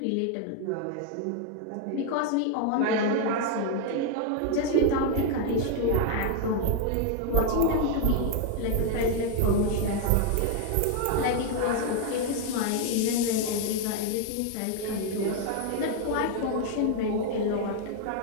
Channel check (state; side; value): different; both; correlation 0.00